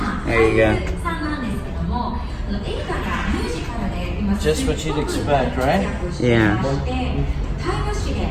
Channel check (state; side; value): identical; both; correlation 1.00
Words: There you go. Just what you'd expect, right? Yeah.